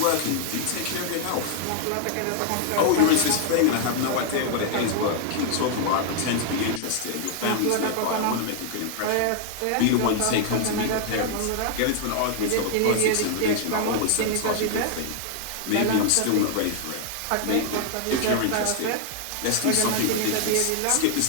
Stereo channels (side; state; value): both; different; correlation 0.00